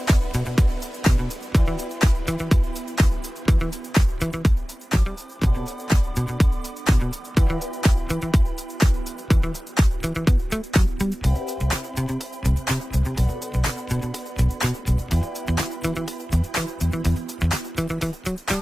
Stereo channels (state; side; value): normal; both; correlation 0.96